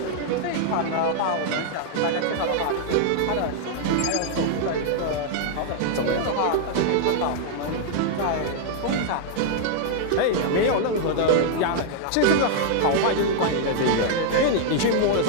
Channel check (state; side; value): different; both; correlation 0.00